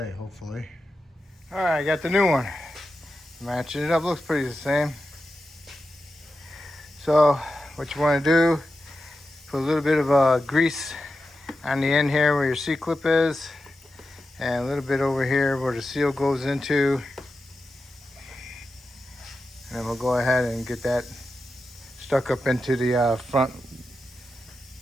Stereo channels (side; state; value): both; normal; correlation 0.90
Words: hopefully. All right, I got the new one. Matching it up, looks pretty the same. So what you want to do, put a little bit of grease on the end here where your C-clip is, and a little bit over here where the seal goes into. And then we'll go ahead and get that stuck up into the front